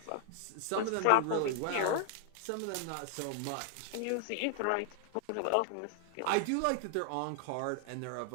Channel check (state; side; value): different; both; correlation 0.00